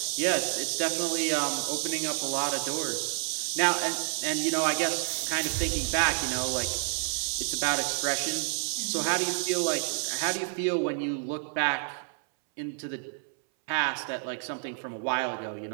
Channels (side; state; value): left; silent; 58 dB below the other